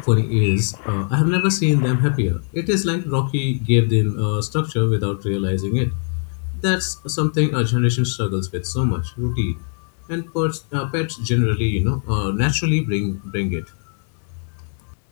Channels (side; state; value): right; silent; 56 dB below the other